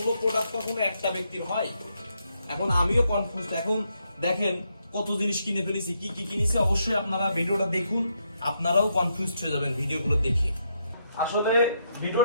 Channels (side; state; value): both; inverted; correlation -0.78